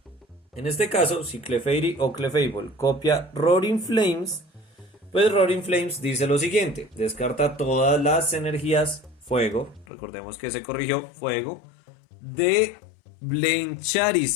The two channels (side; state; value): right; drops out; at 9.9 s